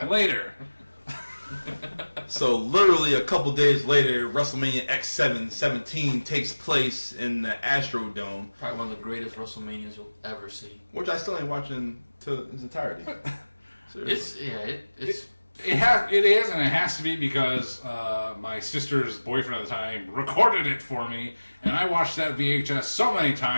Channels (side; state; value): both; inverted; correlation -1.00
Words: later. So literally a couple days later, WrestleMania X17 takes place in the Astrodome, Probably one of the greatest WrestleManias you'll ever see. which I still ain't watching to its entirety. Seriously. It's It is, and it has to be because my sister's boyfriend at the time recorded it for me, and I watched that VHS so many